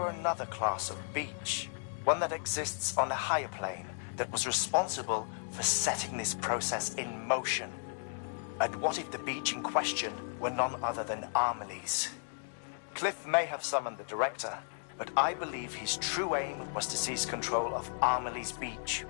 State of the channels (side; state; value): right; silent; 55 dB below the other